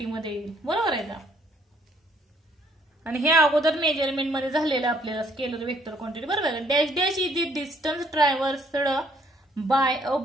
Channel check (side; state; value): both; normal; correlation 0.65